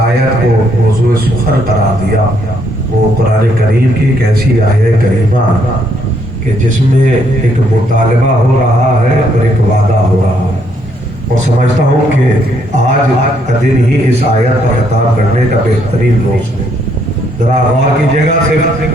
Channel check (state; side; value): normal; both; correlation 0.71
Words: کو موضوع سخن قرار دیا وہ قرآن کریم کی ایک ایسی آیت کریمہ کہ جس میں ایک مطالبہ ہو رہا ہے اور ایک وعدہ ہو رہا ہے، اور سمجھتا ہوں کہ آج کا دن ہی اس آیت پر خطاب کرنے کا بہترین روز ہے۔ ذرا غور کیجیے گا، صرف